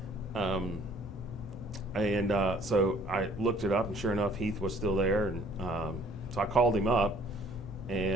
So I looked it up, and sure enough, Heath was still there. And so I called him up,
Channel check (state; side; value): normal; both; correlation 0.58